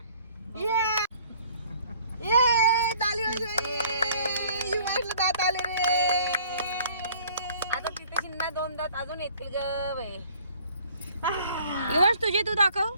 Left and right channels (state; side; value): inverted; both; correlation -0.55